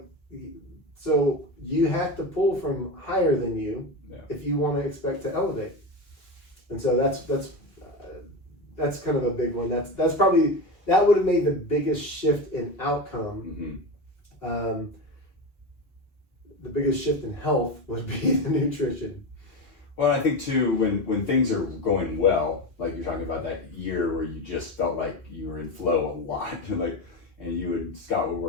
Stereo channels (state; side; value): late; right; 2.8 ms